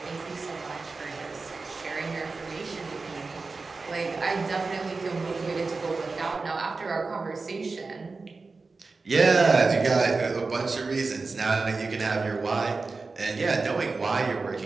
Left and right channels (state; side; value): quieter; left; 4.0 dB